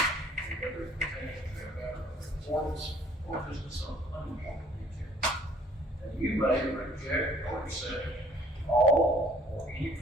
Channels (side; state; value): both; normal; correlation 0.57